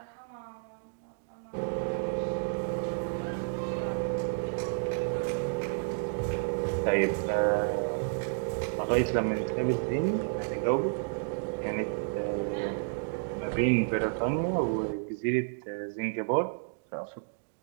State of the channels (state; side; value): silent; left; digital silence